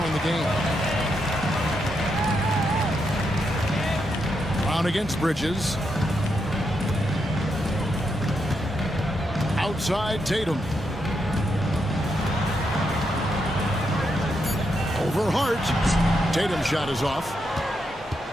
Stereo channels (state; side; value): normal; both; correlation 0.82